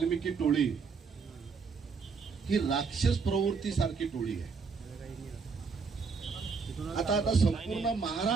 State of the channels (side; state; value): left; quieter; 5.2 dB